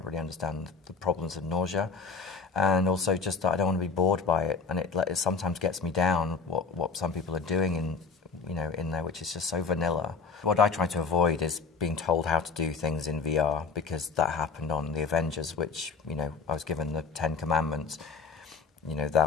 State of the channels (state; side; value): quieter; right; 4.9 dB